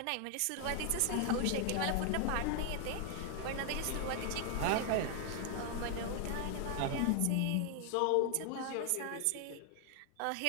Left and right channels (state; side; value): different; both; correlation 0.00